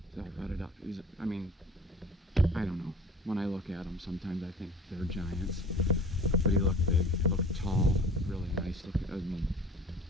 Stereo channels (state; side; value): normal; both; correlation 0.44